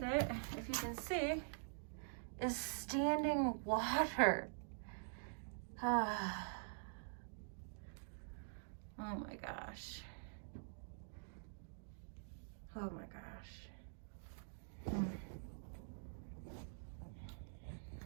it, if you can see, is standing water. Oh my gosh. Oh my gosh.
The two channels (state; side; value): silent; left; digital silence